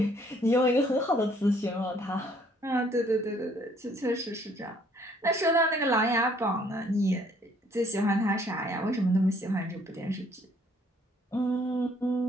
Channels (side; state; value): both; normal; correlation 0.63